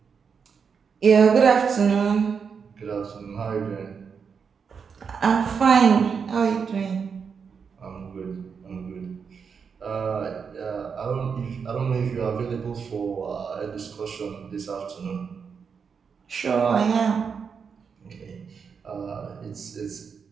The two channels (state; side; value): quieter; left; 6.1 dB